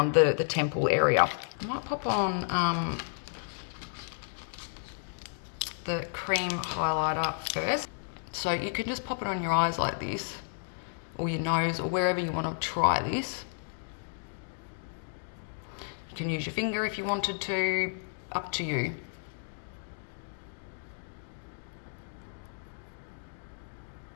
the temple area. I might pop on the cream highlighter first. So you can just pop it on your eyes like this, or your nose, or wherever you want to try this. You can use your finger if you wanted to, up to you.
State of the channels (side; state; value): right; silent; digital silence